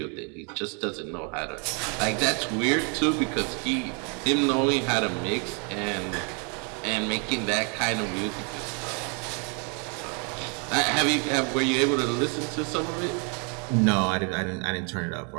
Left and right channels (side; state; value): left; quieter; 36.4 dB